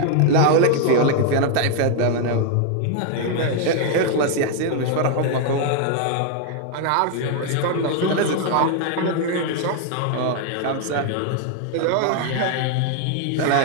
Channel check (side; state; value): both; different; correlation 0.00